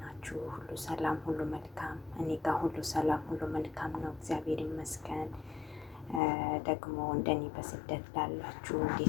ሁሉ ሰላም፣ ሁሉ መልካም? እኔ ጋር ሁሉ ሰላም፣ ሁሉ መልካም ነው፣ እግዚአብሔር ይመስገን። ደግሞ እንደኔ በስደት ላላችሁ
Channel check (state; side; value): drops out; right; at 6.2 s